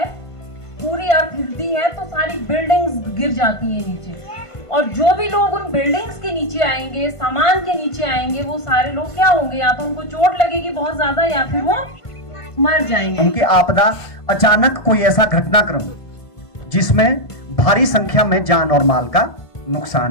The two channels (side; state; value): right; late; 1.5 ms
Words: पूरी अर्थ हिलती है, तो सारी बिल्डिंग्स गिर जाती है नीचे, और जो भी लोग उन बिल्डिंग्स के नीचे आएंगे, सामान के नीचे आएंगे, वो सारे लोग क्या होंगे? या तो उनको चोट लगेगी बहुत ज्यादा, या फिर वो मर जाएंगे। उनकी आपदा अचानक कोई ऐसा घटनाक्रम जिसमें भारी संख्या में जान और माल का